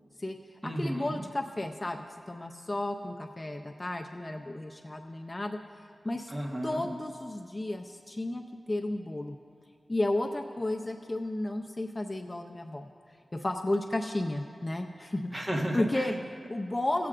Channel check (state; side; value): normal; both; correlation 0.98